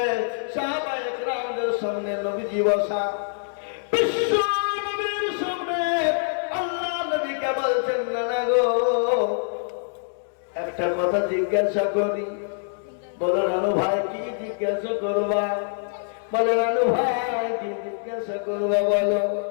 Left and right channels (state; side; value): silent; right; digital silence